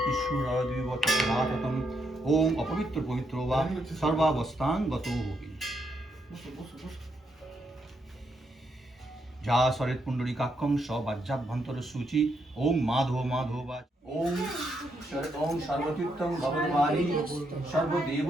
সুরদ্বিবৎসদাততম। ওম অপবিত্র পবিত্র বা সর্বাবস্থাং গতো হবি। যা সরেত পুণ্ডরীকাক্ষং সবাজ্যাভ্যন্তর সূচি। ওম মাধব মাধবাজ। ওম ওম সর্বতীর্থং ভগবানি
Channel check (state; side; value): normal; both; correlation 0.78